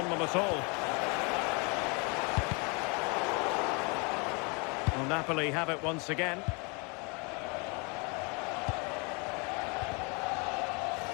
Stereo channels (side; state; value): right; quieter; 31.8 dB